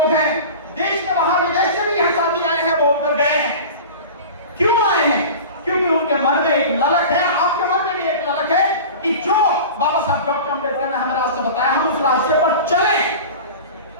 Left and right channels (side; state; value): both; inverted; correlation -0.35